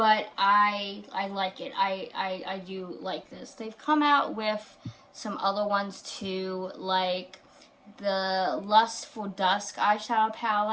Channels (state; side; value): identical; both; correlation 1.00